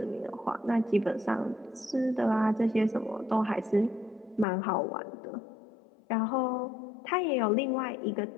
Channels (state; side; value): drops out; right; at 4.5 s